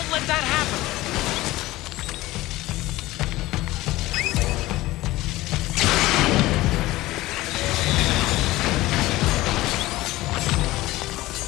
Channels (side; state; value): right; quieter; 18.0 dB